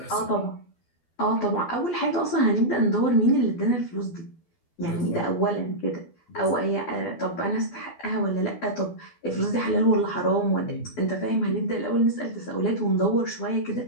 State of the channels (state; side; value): late; right; 12 ms